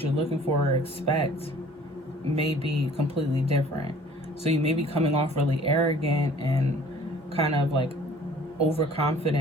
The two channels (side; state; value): both; normal; correlation 0.51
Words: you're looking for or expect may be completely different. So you may be coming off really arrogant and kind of like